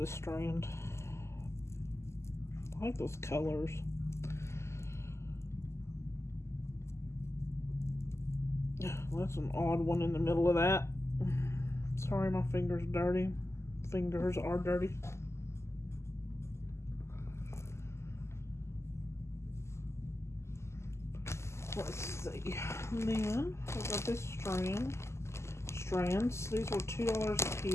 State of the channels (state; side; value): late; right; 0.13 ms